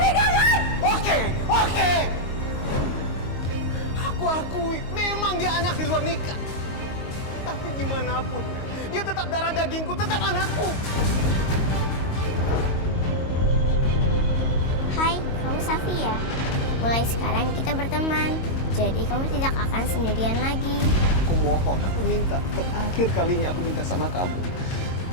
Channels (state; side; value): late; right; 22 ms